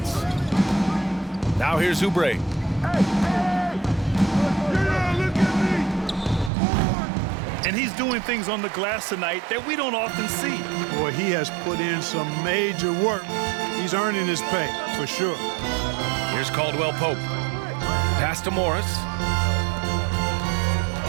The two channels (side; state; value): left; drops out; at 6.5 s